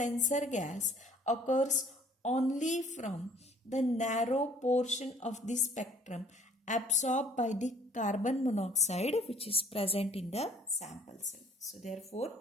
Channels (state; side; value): normal; both; correlation 0.58